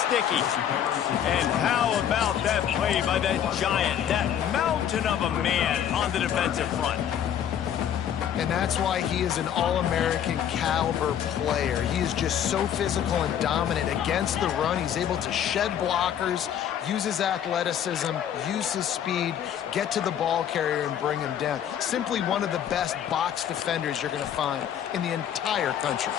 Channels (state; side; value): quieter; right; 9.6 dB